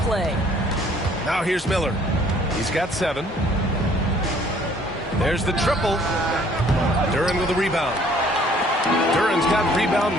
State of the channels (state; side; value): normal; both; correlation 0.59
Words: play. Now here's Miller. He's got 7. There's the triple. Duran with a rebound. Duran's got